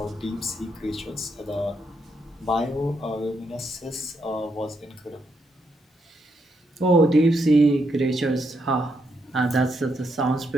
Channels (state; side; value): normal; both; correlation 0.78